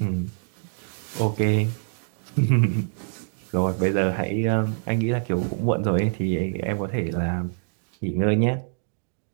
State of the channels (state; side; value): silent; left; 62 dB below the other